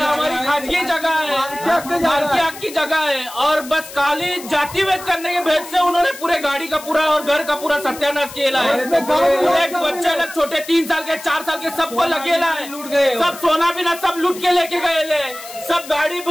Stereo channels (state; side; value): noise; left; hiss, 15 dB below the sound